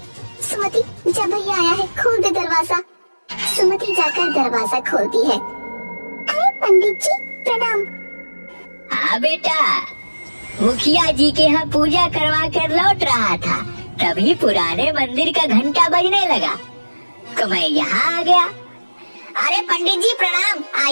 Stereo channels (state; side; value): inverted; both; correlation -1.00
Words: सुमति, जब भैया आया है, खोल दे दरवाजा। सुमति जाकर दरवाजा खोलती है। अरे पंडित जी, प्रणाम। हाँ बेटा, मुखिया जी के यहाँ पूजा करवा कर लौट रहा था, तभी पुराने मंदिर का घंटा बजने लगा तो मैं यहाँ आ गया। अरे पंडित जी प्रणाम।